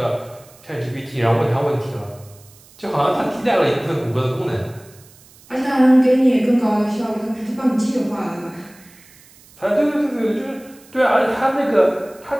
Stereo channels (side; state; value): right; noise; hiss, 26 dB below the sound